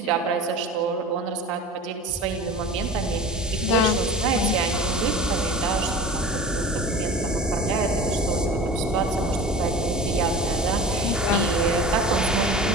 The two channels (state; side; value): normal; both; correlation 0.36